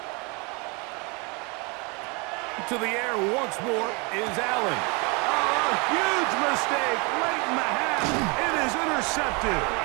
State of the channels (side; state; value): left; quieter; 30.3 dB